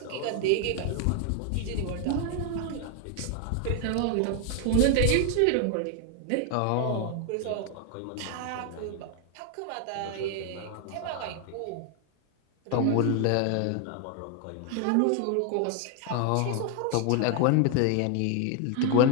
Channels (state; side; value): different; both; correlation 0.00